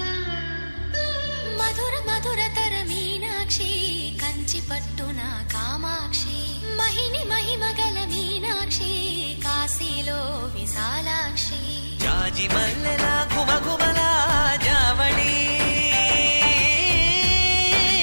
మధుర మధురతర మీనాక్షి కంచి పట్టున కామాక్షి మహిని మహిమగల మీనాక్షి కాశీలో విశాలాక్షి జాజి మల్లెలా గుమగుమలా జావళి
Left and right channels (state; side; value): inverted; both; correlation -1.00